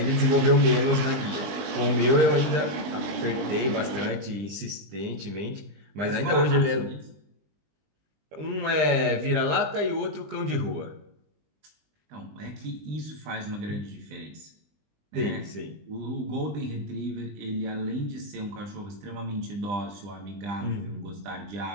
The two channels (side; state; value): left; late; 20 ms